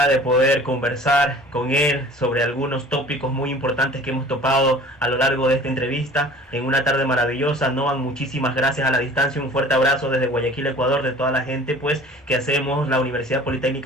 de poder conversar con él sobre algunos tópicos muy importantes que hemos topado a lo largo de esta entrevista en una tarde maravillosa. Noam, muchísimas gracias a la distancia, un fuerte abrazo desde Guayaquil, Ecuador, de toda la gente pues que hacemos la Universidad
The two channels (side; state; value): both; normal; correlation 0.46